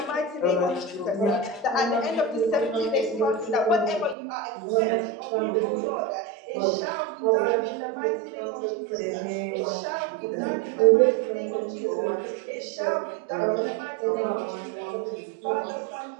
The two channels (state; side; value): drops out; left; at 4.2 s